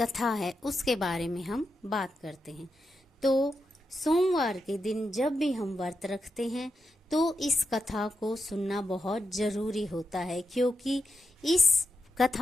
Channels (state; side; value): normal; both; correlation 0.87